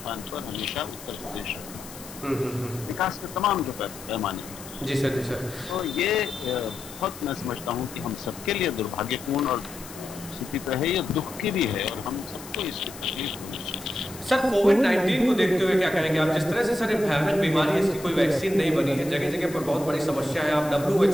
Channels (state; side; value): noise; left; hiss, 15 dB below the sound